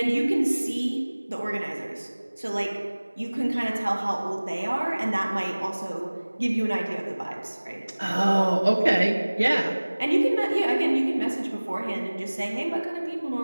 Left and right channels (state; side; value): inverted; both; correlation -1.00